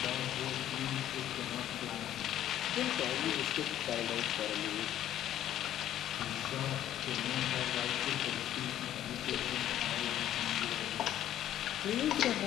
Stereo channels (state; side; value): quieter; right; 11.9 dB